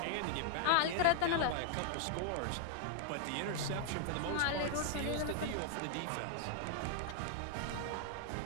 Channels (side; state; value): both; different; correlation 0.00